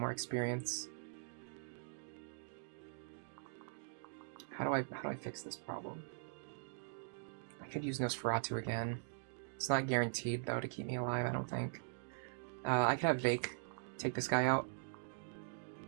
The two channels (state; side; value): silent; left; digital silence